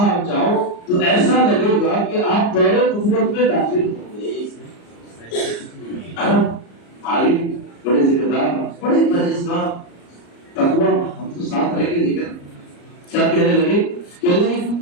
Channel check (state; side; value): late; right; 34 ms